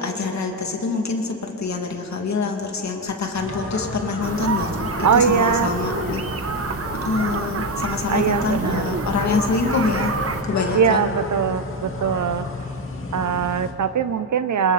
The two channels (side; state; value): both; normal; correlation 0.08